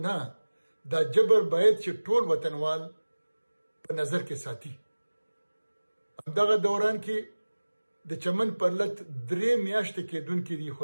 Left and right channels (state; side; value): inverted; both; correlation -1.00